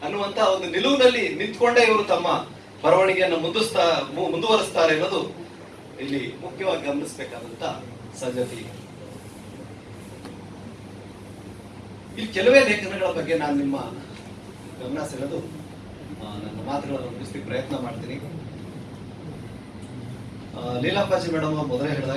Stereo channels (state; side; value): identical; both; correlation 1.00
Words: ಅನ್ನುವಂತಹ ಒಂದು ನಿಲುವಿನಲ್ಲಿ ನಿಂತ್ಕೊಂಡೇ ಇವರು ತಮ್ಮ ಬರವಣಿಗೆಯನ್ನು ಮುಂದುವರಿಸ್ತಾರೆ ಅನ್ನೋದು ಇಲ್ಲಿ ಮುಖ್ಯವಾಗಿ ಗಮನಿಸಬೇಕಾದಂತ ಸಂಗತಿ. ಇಲ್ಲಿ ಕೆಲವೇ ಲೇಖನಗಳ ಬಗ್ಗೆ ನಾನು ನಿಮ್ಮ ಗಮನ ಸೆಳೆದು ನನ್ನ ಮಾತುಗಳನ್ನು ಮುಗಿಸ್ಲಿಕ್ಕೆ ಪ್ರಯತ್ನ ಮಾಡ್ತೀನಿ. ಲೀಲಾಪ್ಪಾಜಿ ಮೇಡಮ್ ಮೊದಲೇ